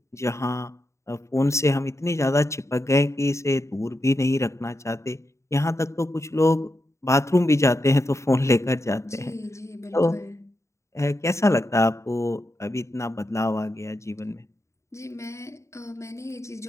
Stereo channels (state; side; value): late; right; 0.14 ms